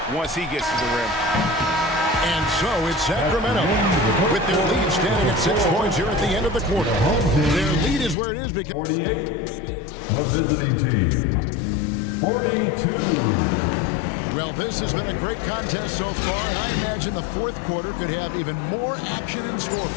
once he gets to the rim. And so it's Sacramento with their lead standing at 6 points here at the end of the quarter. Their lead is where it is because 48. The visiting team. 42. well, this has been a great contest so far, and I imagine the fourth quarter could have even more action in store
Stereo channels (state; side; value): drops out; right; at 8.2 s